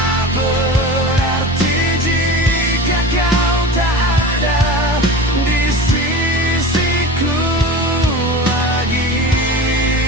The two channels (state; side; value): normal; both; correlation 0.32